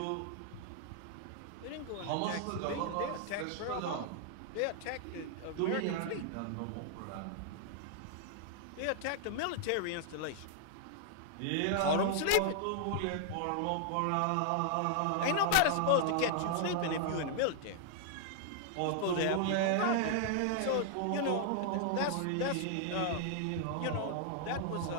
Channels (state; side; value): different; both; correlation -0.01